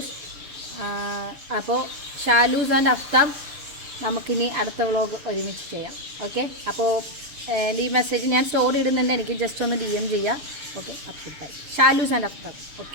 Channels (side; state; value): left; late; 6.7 ms